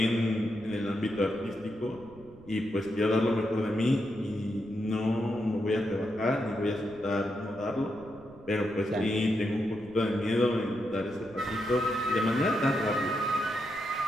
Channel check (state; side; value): noise; right; rumble, 22 dB below the sound